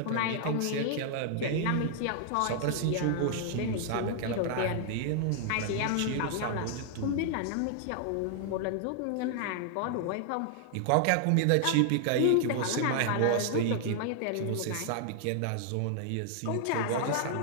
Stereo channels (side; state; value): both; different; correlation 0.00